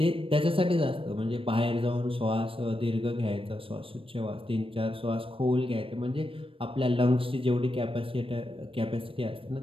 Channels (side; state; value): left; late; 0.26 ms